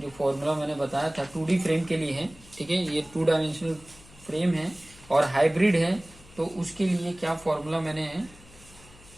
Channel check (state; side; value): noise; left; hum, 23 dB below the sound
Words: फॉर्मूला मैंने बताया था 2D फ्रेम के लिए है, ठीक है। ये 2 डायमेंशनल फ्रेम है और हाइब्रिड है, तो उसके लिए क्या फॉर्मूला मैंने